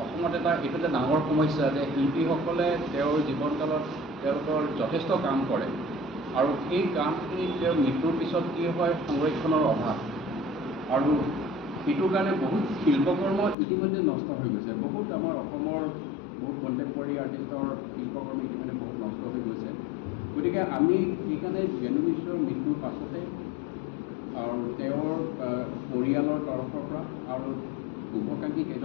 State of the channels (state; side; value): drops out; right; at 13.6 s